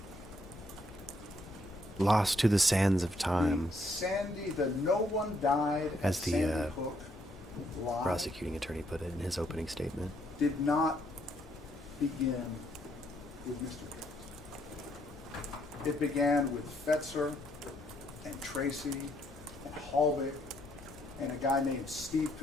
Lost to the sands of time. Sandy, the no one died As the Sandy Hook lie prosecuting attorney put it in his opening statement. did not begin with Mr. Jones. It began with Fetzer and Tracy and Hallvik and a guy named Steve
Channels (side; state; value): both; normal; correlation 0.72